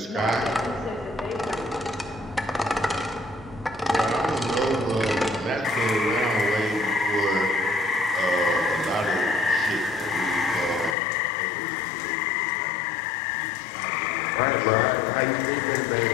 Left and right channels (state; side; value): drops out; right; at 11.0 s